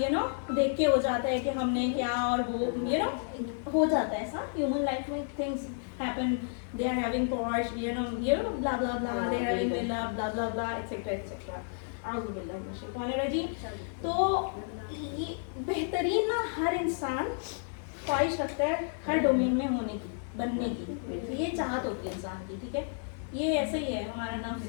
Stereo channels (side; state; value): right; silent; digital silence